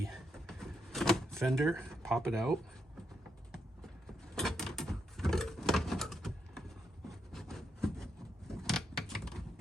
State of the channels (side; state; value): both; normal; correlation 0.80